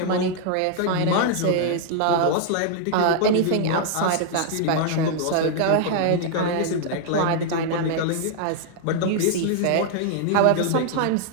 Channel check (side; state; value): both; different; correlation -0.01